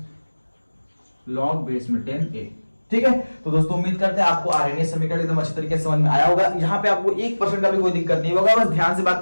log बेस में 10a, ठीक है। तो दोस्तों उम्मीद करते हैं आपको आर्यनीय समीकरण एकदम अच्छी तरीके से समझ में आया होगा, यहाँ पे आपको 1% का भी कोई दिक्कत नहीं होगा, बस ध्यान से बात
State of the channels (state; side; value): inverted; both; correlation -1.00